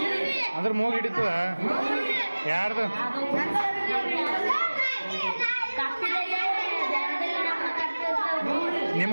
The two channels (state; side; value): inverted; both; correlation -1.00